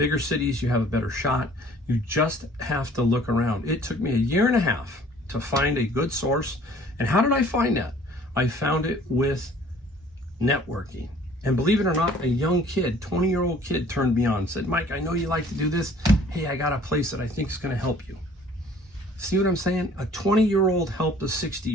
cities, you have a better shot. You just have to look around. It took me 1.5 years to find a good source. And how did I find that? I found it with networking. And believe it or not, a young kid, 20-year-old kid turned me on, said, Mike, I know you like to do this. Hey, I got a place that I think is going to help you. See what I'm saying? A 20-year-old helped a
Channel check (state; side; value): normal; both; correlation 0.54